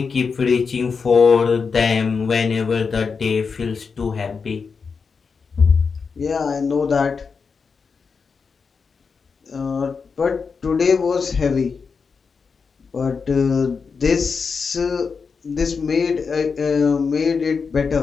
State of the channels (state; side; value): quieter; right; 5.3 dB